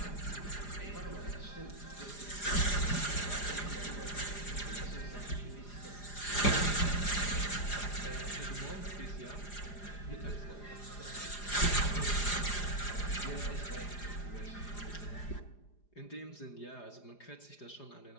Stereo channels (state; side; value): late; right; 4.9 ms